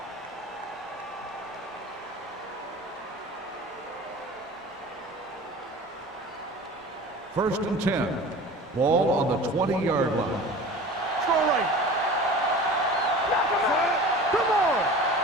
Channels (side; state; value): both; normal; correlation 0.38